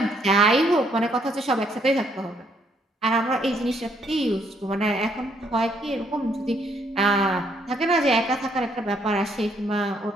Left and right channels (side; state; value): both; normal; correlation 0.70